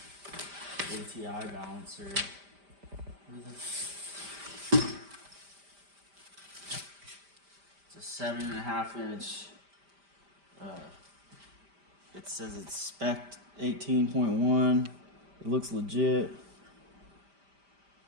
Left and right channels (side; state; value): left; late; 5.0 ms